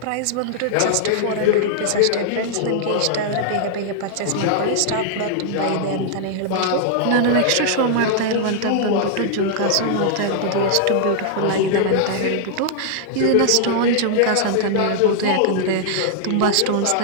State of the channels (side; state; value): both; different; correlation -0.01